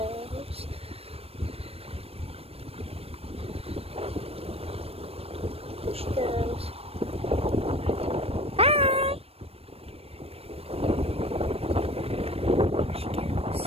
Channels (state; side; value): late; left; 0.28 ms